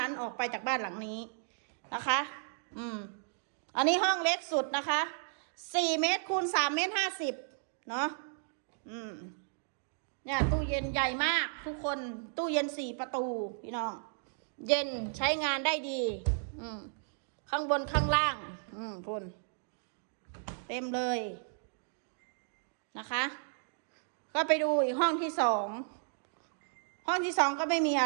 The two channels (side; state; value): left; silent; digital silence